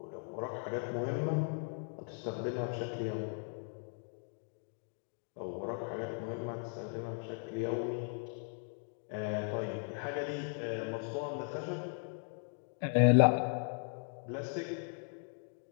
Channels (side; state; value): right; silent; 53 dB below the other